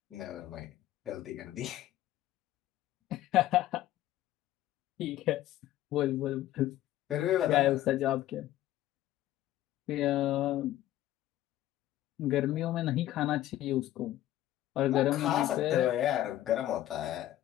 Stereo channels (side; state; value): right; quieter; 13.8 dB